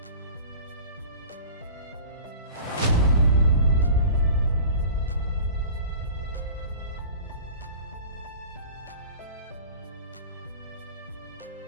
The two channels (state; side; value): inverted; both; correlation -0.41